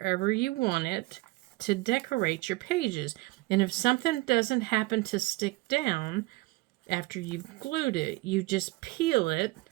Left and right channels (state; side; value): quieter; left; 22.1 dB